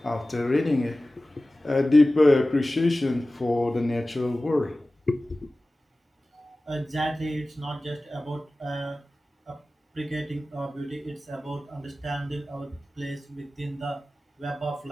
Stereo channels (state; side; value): normal; both; correlation 0.97